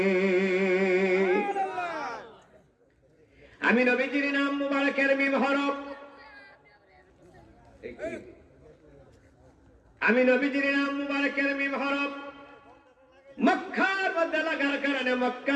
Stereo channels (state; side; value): identical; both; correlation 1.00